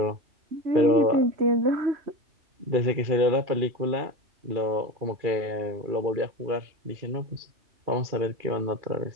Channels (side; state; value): left; late; 2.4 ms